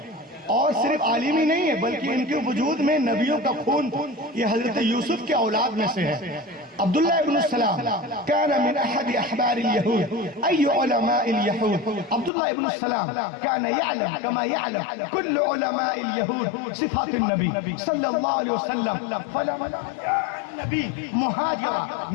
और सिर्फ आलिम ही नहीं है, बल्कि इनके वजूद में नबियों का खून, ये हजरत यूसुफ के औलाद में से है। अब्दुल्ला इब्न सलाम काना मिन अहद अहबार यहूद अय्यु उलमा यहूद। अब्दुल्ला इब्न सलाम काना यअलम कमा यअलम कुल्लु उलमा यहूद सिफात नबी सल्लल्लाहु अलैहि वसल्लम। फलमा नबी मुहाजिरा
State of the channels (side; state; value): right; drops out; at 12.3 s